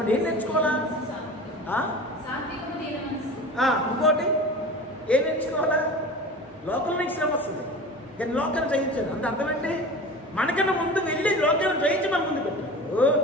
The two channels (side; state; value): both; normal; correlation 0.35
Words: ఏం నేర్చుకోవాలా? ఇంకోటి ఏం నేర్చుకోవాలా? లోకంలో నీకు శ్రమ వస్తుంది, నేను లోకాన్ని జయించాను అంటే అర్థం ఏంటి? మనకన్నా ముందు వెళ్ళి లోకాన్ని జయించి మన ముందు పెట్టాడు